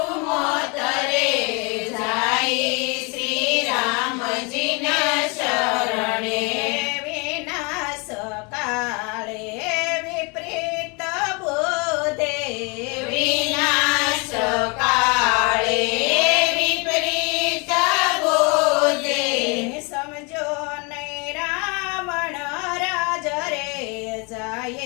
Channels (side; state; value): right; quieter; 30.8 dB